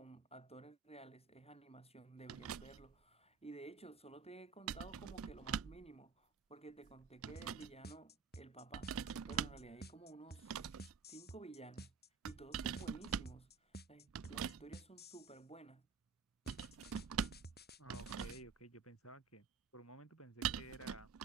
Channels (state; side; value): quieter; left; 6.4 dB